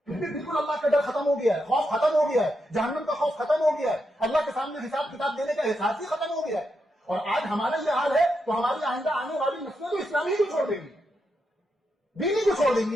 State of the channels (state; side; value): normal; both; correlation 0.84